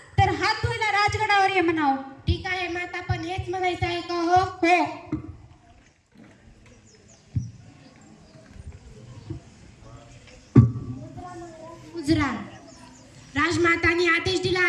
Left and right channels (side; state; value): both; identical; correlation 1.00